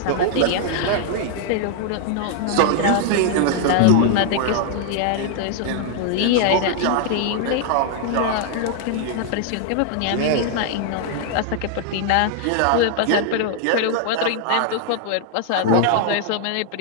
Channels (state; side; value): different; both; correlation 0.00